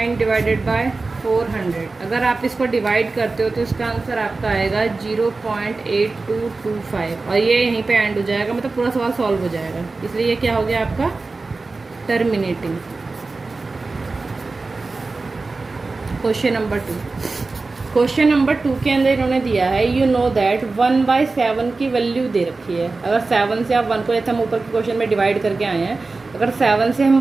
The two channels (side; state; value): left; quieter; 3.7 dB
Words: डिवाइडेड बाय 400। अगर आप इसको डिवाइड करते हो तो इसका आंसर आपका आएगा 0.8225 और ये यहीं पे एंड हो जाएगा, मतलब पूरा सवाल सॉल्व हो जाएगा। इसलिए ये क्या हो गया आपका terminating. Question number 2। Question number 2 के अंदर इन्होंने दिया है यू नो दैट 1/7 की वैल्यू दे रखी है। अगर 7 से आप 1 को, जैसे हम ऊपर के क्वेश्चन में डिवाइड करके आए हैं, अगर 7 से हम